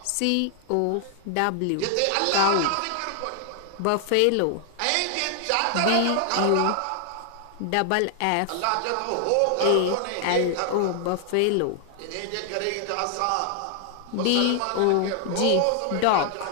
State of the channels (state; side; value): different; both; correlation 0.00